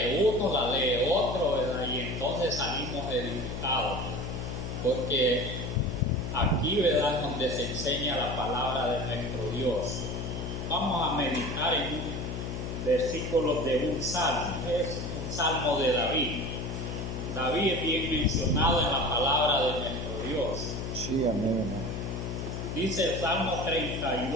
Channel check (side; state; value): left; noise; hum, 5 dB below the sound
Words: uno, la lee otro, ¿verdad? Y entonces salimos edificados. Porque aquí, ¿verdad?, es donde se enseña la palabra de nuestro Dios. Vamos a meditar en un versículo de un salmo. Es un salmo de David. David es bien mencionado en la palabra de nuestro Dios. Sí, amén. Dice el Salmo